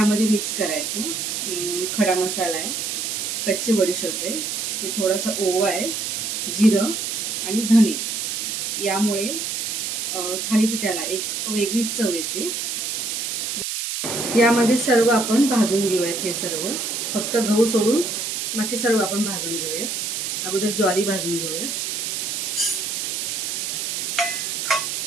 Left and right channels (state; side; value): noise; right; hiss, 2 dB below the sound